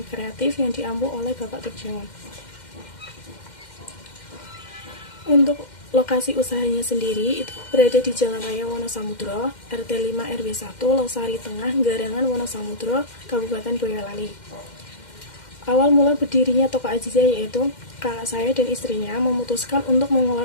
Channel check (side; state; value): right; late; 2.1 ms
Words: kreatif yang diampu oleh Bapak Turjawan. Untuk lokasi usahanya sendiri itu berada di Jalan Raya Wonosamudro, RT 5 RW 1, Losari Tengah, Garangan Wonosamudro, Kabupaten Boyolali. Awal mula berdirinya Toko Azizah yaitu kakak saya dan istrinya memutuskan untuk